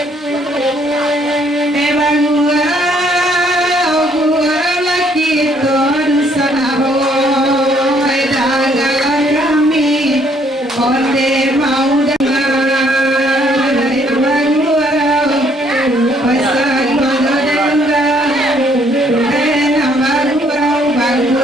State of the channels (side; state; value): both; normal; correlation 0.66